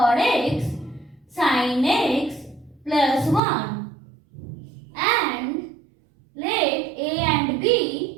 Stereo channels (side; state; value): left; drops out; at 3.4 s